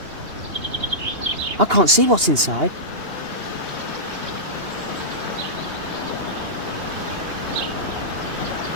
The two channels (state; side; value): late; left; 2.8 ms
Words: I can't see what's inside.